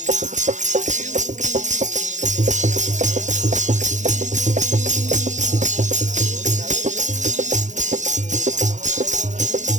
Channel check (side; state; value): left; late; 0.35 ms